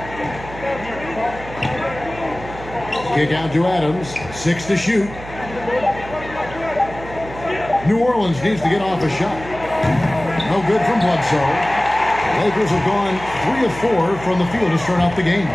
Kick out to Adams. 6 to shoot. New Orleans needs to get off a shot. No good from Bledsoe. Lakers have gone 3 of 4 from the field to start out the game.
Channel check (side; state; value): right; noise; hum, 14 dB below the sound